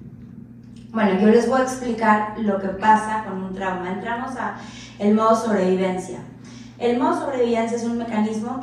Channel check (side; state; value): both; identical; correlation 1.00